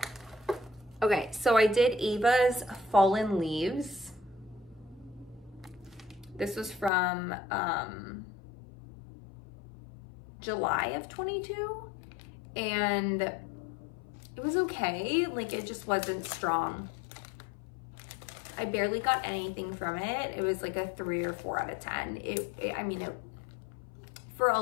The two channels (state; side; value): drops out; right; at 6.9 s